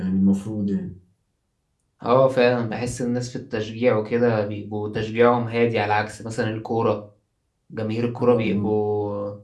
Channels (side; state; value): both; identical; correlation 1.00